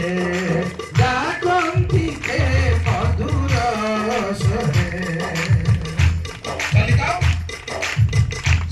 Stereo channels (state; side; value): identical; both; correlation 1.00